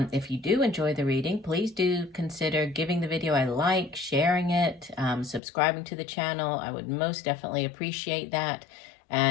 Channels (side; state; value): right; drops out; at 5.4 s